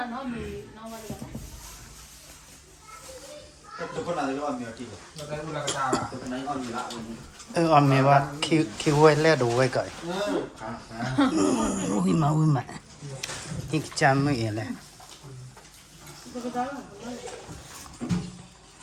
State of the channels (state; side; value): identical; both; correlation 1.00